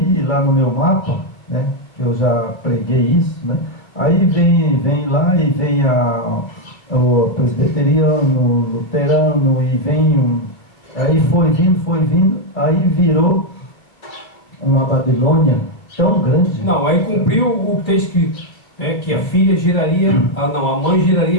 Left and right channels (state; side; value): late; right; 2.4 ms